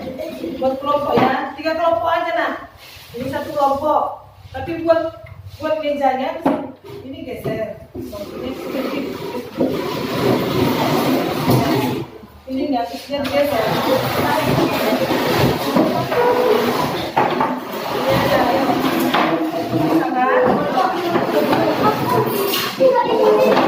Buat kelompok ya, 3 kelompok aja nah. Ini 1 kelompok. Tapi buat mejanya ini geser. Ini nggak geser. Ini aja ya. Sangat.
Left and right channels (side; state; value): both; identical; correlation 1.00